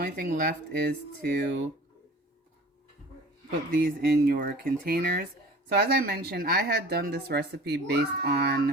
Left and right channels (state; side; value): normal; both; correlation 0.43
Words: thing left is to put these in your containers. So as I mentioned, I had done this recipe based